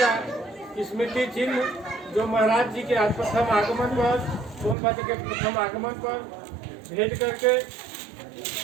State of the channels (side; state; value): left; drops out; at 4.8 s